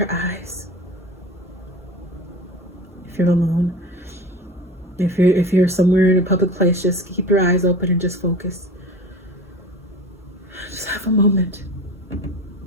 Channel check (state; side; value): normal; both; correlation 0.35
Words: eyes. If you're alone, if you're somewhere in a public place, just keep your eyes open and just focus. Just have a moment.